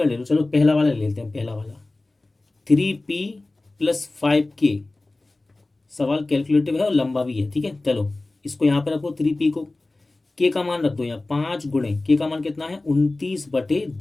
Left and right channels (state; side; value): quieter; right; 3.0 dB